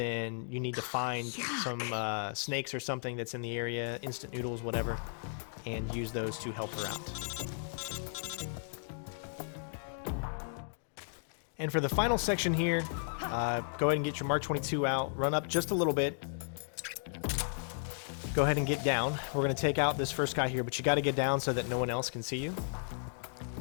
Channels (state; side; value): silent; right; digital silence